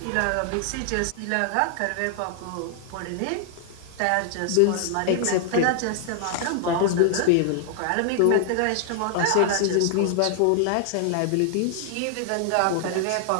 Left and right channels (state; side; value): different; both; correlation 0.00